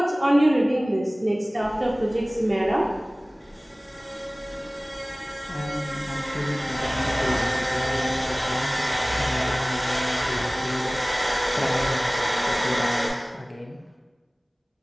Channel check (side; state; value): both; normal; correlation 0.98